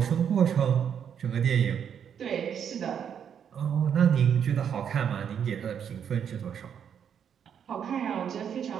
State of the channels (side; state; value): left; quieter; 8.2 dB